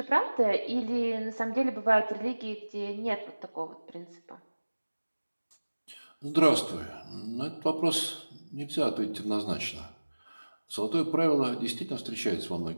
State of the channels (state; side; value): inverted; both; correlation -1.00